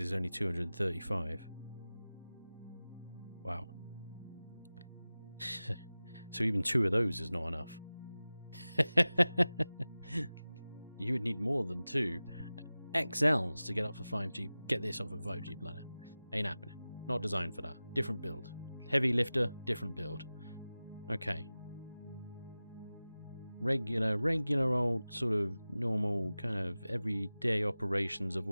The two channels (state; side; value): inverted; both; correlation -0.97